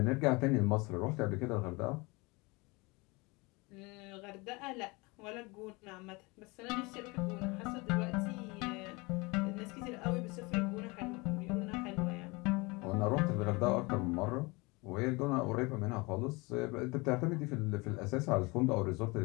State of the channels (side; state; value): right; quieter; 25.8 dB